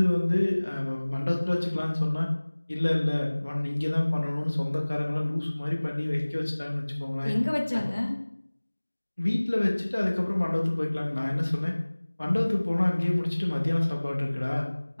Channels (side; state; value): both; inverted; correlation -1.00